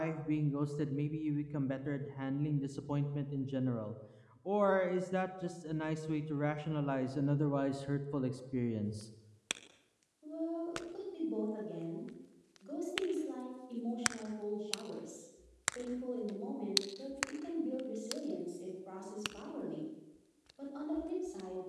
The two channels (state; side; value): identical; both; correlation 1.00